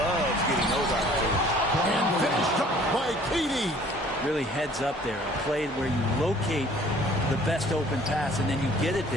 getting those opportunities. And finished up by KD. Really heads up there. A play where you locate the best open pass and then you get it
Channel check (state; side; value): normal; both; correlation 0.54